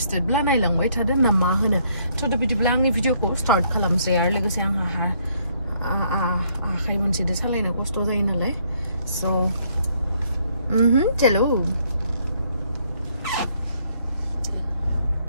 ब्ला नायलांबाय थादो ना मा होनो थ' बिदिब्ला आंनि भिडिअखौ स्टार्ट खालामसै आरो लोगोसे आंहा आखाइ मोनसेजों सालायनो खस्थ' जायो नालाय सो चलो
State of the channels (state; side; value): inverted; both; correlation -0.68